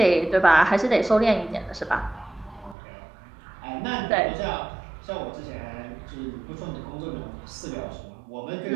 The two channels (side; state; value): left; drops out; at 2.8 s